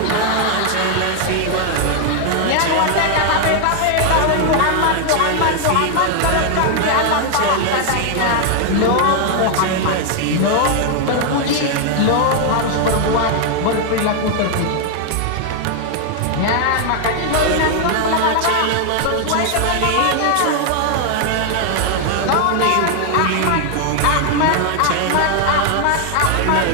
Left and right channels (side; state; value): both; different; correlation 0.00